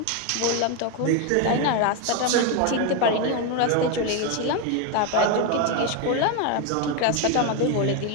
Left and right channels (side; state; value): both; different; correlation 0.02